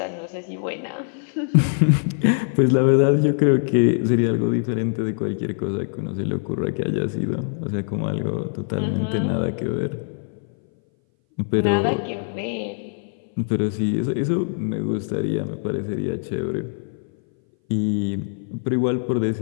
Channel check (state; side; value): silent; right; 60 dB below the other